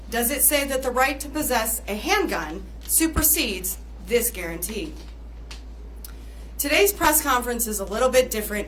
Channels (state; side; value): identical; both; correlation 1.00